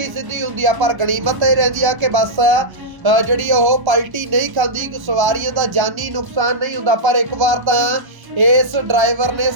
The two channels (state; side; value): late; left; 1.1 ms